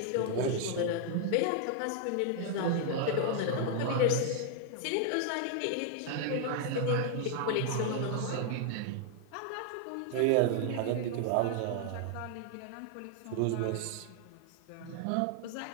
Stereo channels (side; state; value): both; different; correlation 0.00